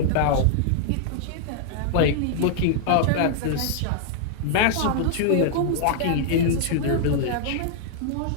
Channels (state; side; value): different; both; correlation 0.00